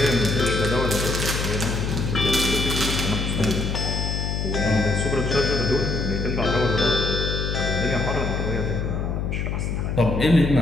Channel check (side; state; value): left; noise; hum, 1 dB below the sound